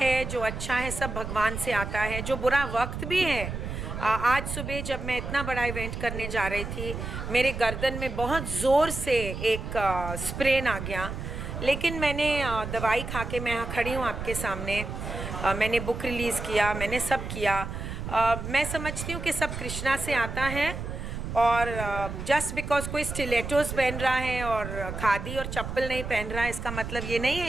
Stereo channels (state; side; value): noise; right; rumble, 6 dB below the sound